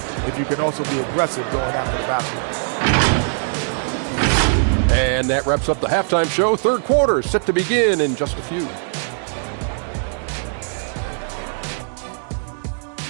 if you can also be aggressive going after the basketball. And that wraps up the halftime show. Third quarter set to begin in just a few.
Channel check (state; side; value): silent; left; digital silence